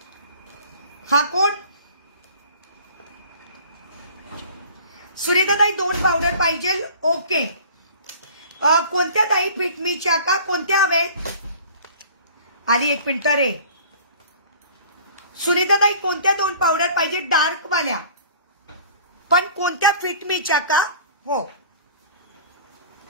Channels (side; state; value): both; inverted; correlation -0.46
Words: हा कोण. सुनीता ताई 2 पावडर पाहिजे. ओके, कोणत्या ताई. फिटमीच्या का, कोणत्या हवेत. आली 1 मिनिट रे. सुनीता ताई कोणत्या 2 पावडर पाहिजे. डार्क वाल्या पण कोणत्या. फिटमीच्या का. हो,